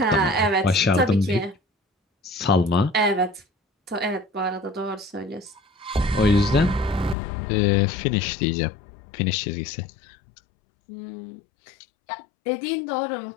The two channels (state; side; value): drops out; right; at 7.2 s